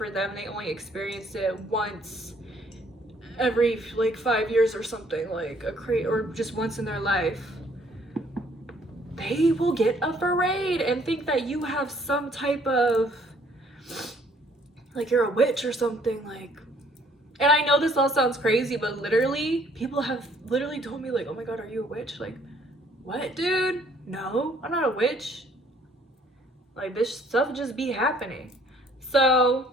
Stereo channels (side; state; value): both; normal; correlation 0.62